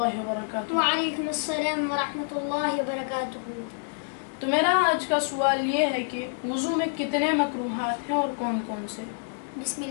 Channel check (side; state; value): right; silent; digital silence